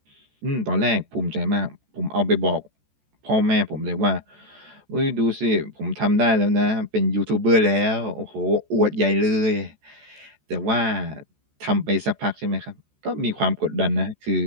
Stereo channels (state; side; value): late; left; 14 ms